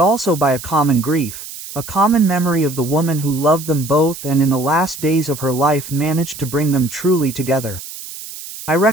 also by a common grief, a common memory of the woman who loved them both and in the last days of her life managed to bring them truly together. I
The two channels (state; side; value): noise; right; hiss, 12 dB below the sound